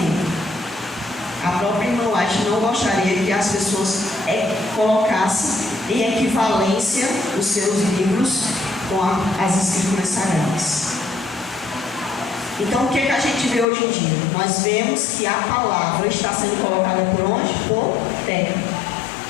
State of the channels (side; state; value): right; drops out; at 13.7 s